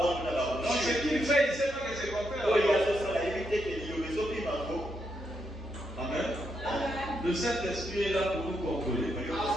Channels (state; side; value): normal; both; correlation 0.81